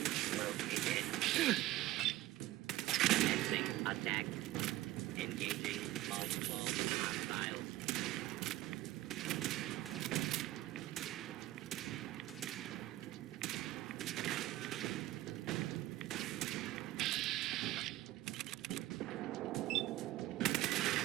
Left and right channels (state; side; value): quieter; left; 16.2 dB